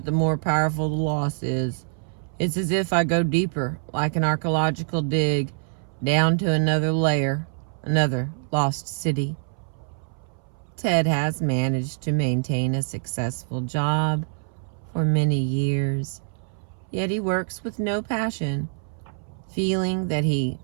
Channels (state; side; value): silent; left; 62 dB below the other